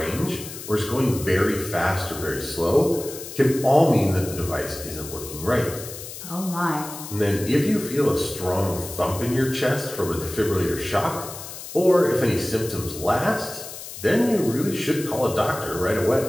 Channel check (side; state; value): left; noise; hiss, 11 dB below the sound